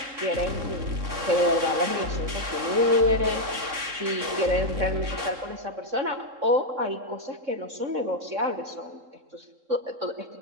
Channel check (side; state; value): left; late; 3.6 ms